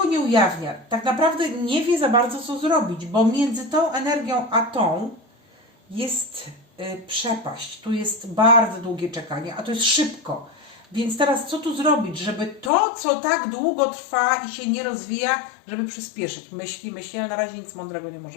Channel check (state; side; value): drops out; right; at 12.7 s